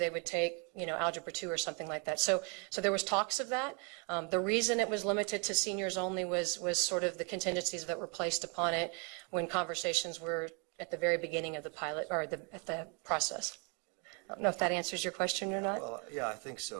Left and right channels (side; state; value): left; quieter; 35.2 dB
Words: would take, Algebra 2 or something like that. So there was talks of that. The reason it was limited to seniors only was sort of the contingencies that were placed upon it when conversations were at the very beginning of the pilot or at the process. I don't know if that answers your question or not. Well, yeah, I think